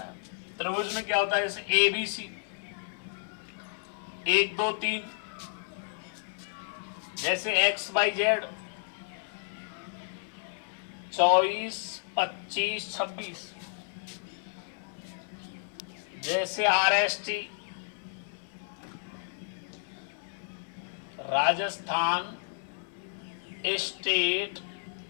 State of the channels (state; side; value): silent; right; 57 dB below the other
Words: है। त्रिभुज में क्या होता है जैसे ए बी सी 1 2 3, जैसे एक्स वाई जेड 24 25 26, जैसे are S T Rajasthan state